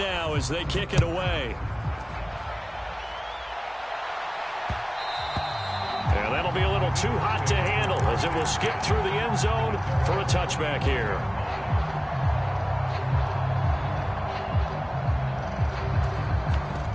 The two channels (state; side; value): identical; both; correlation 1.00